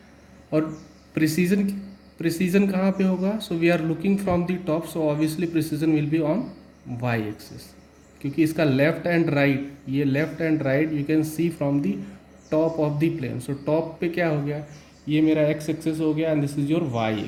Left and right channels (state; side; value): identical; both; correlation 1.00